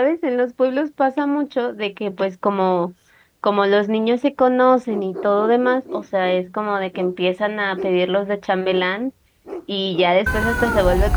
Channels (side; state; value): both; identical; correlation 1.00